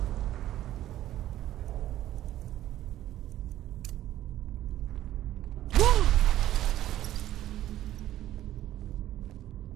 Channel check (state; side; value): quieter; left; 13.3 dB